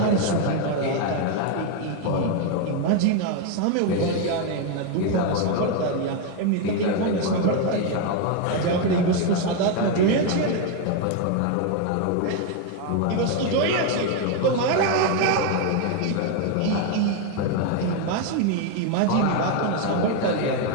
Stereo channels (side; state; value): both; different; correlation 0.01